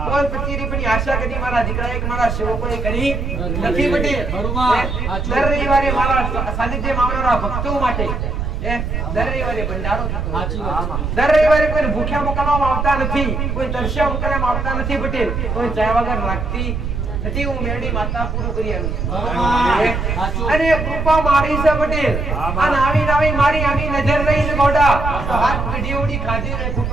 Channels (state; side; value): noise; right; rumble, 2 dB below the sound